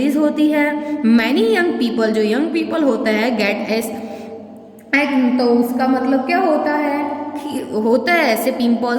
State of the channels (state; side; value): identical; both; correlation 1.00